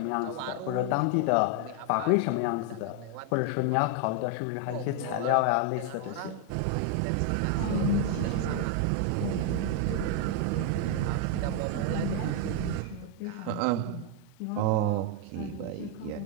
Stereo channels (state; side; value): different; both; correlation 0.01